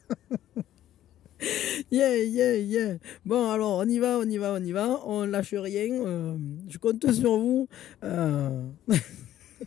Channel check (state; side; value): quieter; right; 12.5 dB